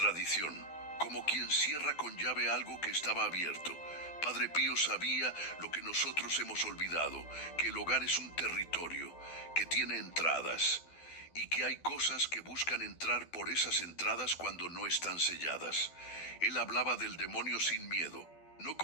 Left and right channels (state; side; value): late; right; 12 ms